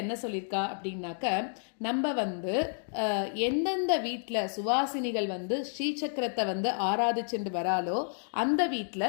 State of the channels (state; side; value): silent; right; digital silence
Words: என்ன சொல்லியிருக்கா அப்படின்னாக்க, நம்ம எந்தெந்த வீட்டில் சுவாசினிகள் ஸ்ரீசக்கரத்தை ஆராதிச்சுட்டு வராலோ அந்த வீட்டில்